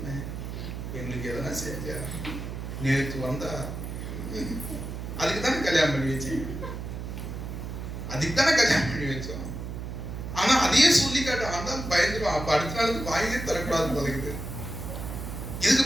எங்களுக்கு எதனா செஞ்சா, நேற்று வந்தா, அதுக்கு தானே கல்யாணம் பண்ணி வச்சீங்க, அதுக்கு தானே கல்யாணம் பண்ணி வச்சோம். ஆனா அதையே சொல்லி காட்ட பயந்துடும். அப்ப அடுத்த நாளுக்கு வாங்கியே தரக்கூடாது பழகுது.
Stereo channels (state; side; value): noise; right; hum, 7 dB below the sound